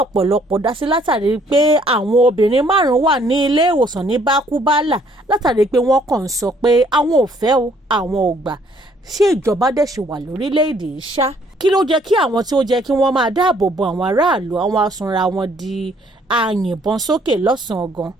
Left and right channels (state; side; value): normal; both; correlation 0.63